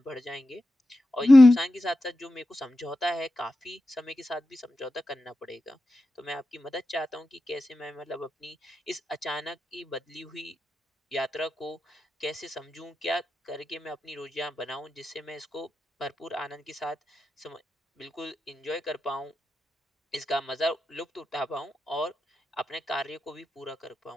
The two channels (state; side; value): normal; both; correlation 0.91